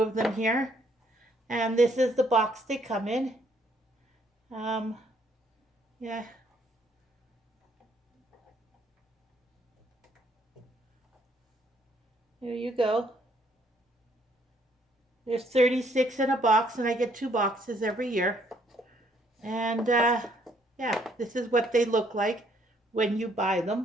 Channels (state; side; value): normal; both; correlation 0.67